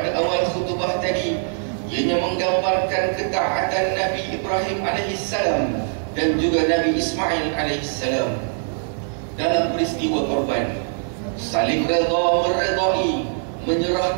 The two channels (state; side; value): silent; left; 56 dB below the other